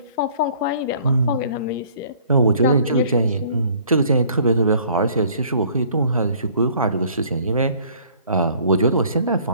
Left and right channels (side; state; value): both; inverted; correlation -0.56